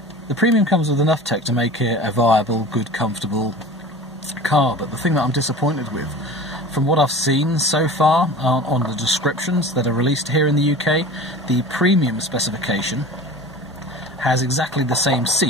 comes with enough tech to make it a viable, good, comfortable car. But the thing that I'm disappointed with, from what I've seen so far on the descriptions that are released here in the UK, the premium specification has exactly the same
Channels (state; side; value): normal; both; correlation 0.38